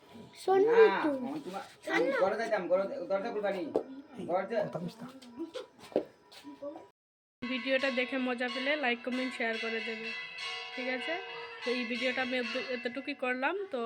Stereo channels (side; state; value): both; identical; correlation 1.00